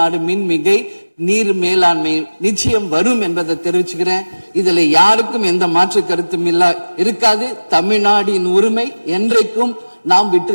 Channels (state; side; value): inverted; both; correlation -1.00